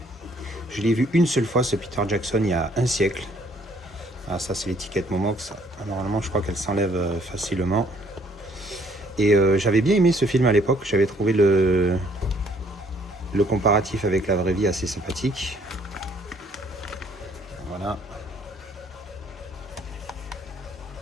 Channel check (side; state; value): both; normal; correlation 0.63